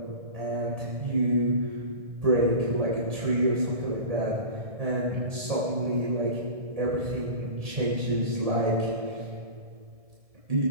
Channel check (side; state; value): left; late; 1.7 ms